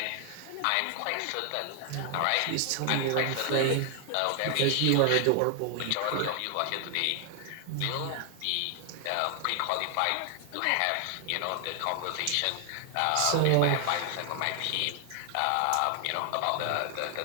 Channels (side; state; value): both; different; correlation 0.00